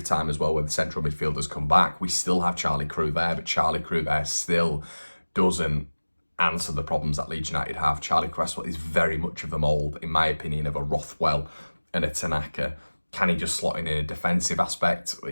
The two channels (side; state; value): both; inverted; correlation -1.00